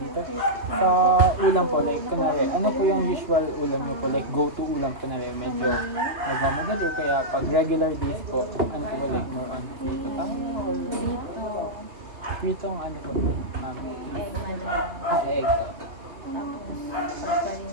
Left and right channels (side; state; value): left; late; 2.5 ms